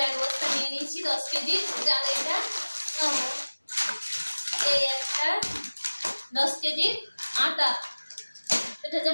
এক বস্তা নিয়ে নিয়েছি, 10 কেজি চাল। এটা এই একটা 10 কেজি আটা। এটা হচ্ছে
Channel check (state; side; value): inverted; both; correlation -1.00